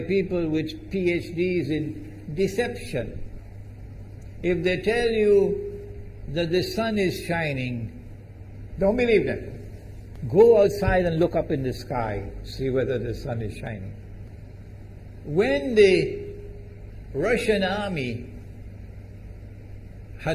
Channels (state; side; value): identical; both; correlation 1.00